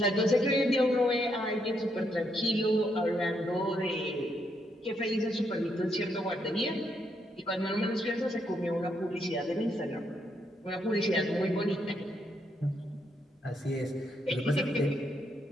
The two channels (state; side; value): normal; both; correlation 0.77